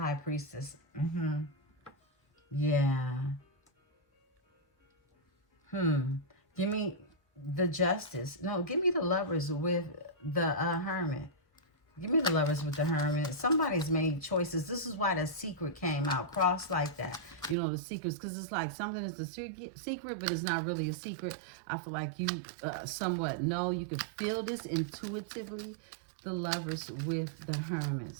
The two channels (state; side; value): drops out; left; at 17.6 s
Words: Priestess. Yeah. Give me the Justice. No, give me the Lovers with the Hermit. Give me the Lovers with the Hermit. Somebody's made choices. This is why the secret came out. Cross like that. You know, the secrets. Because it's like something is a secret, but it's not really a secret. I feel like you somewhat know. You can feel this intuitively. The Lovers with the Hermit